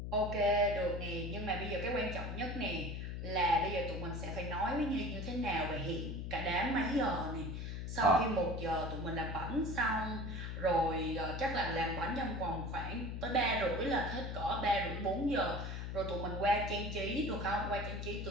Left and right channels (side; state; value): left; noise; hum, 5 dB below the sound